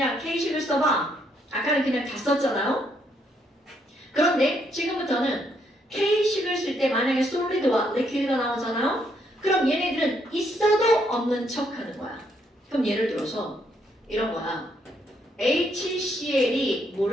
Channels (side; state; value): both; normal; correlation 0.73